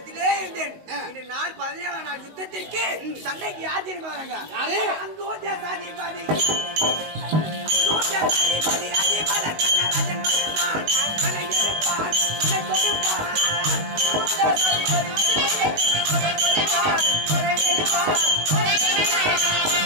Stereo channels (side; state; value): left; late; 19 ms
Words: இருந்தேன். இன்று நாள் 17 நாள் யுத்தத்திற்கு சண்டைக்கு யார் தெரியுமா வராங்க? யாரு? அங்கோஜாதிபதி அதிபல கண்ணராஜன் வருவான். கண்ணை எடுப்பான், கண்ணை கொடுப்பான்.